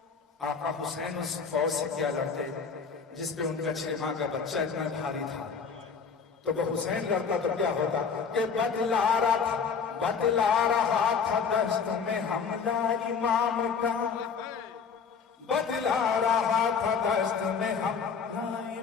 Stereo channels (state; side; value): quieter; right; 5.9 dB